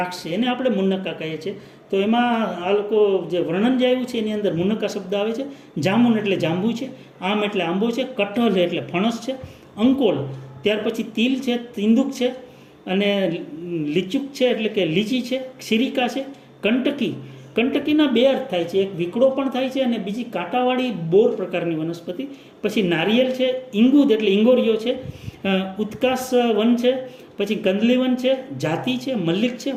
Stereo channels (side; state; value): both; identical; correlation 1.00